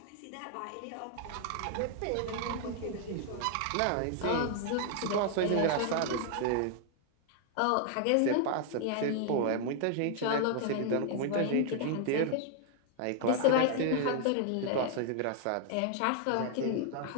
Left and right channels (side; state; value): both; different; correlation 0.00